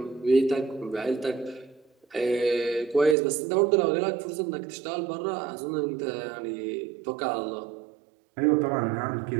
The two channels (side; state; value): left; drops out; at 3.2 s